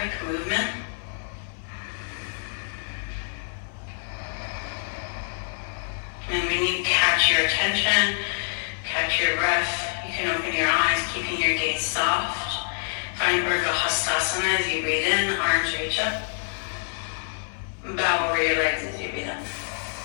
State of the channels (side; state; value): right; silent; 58 dB below the other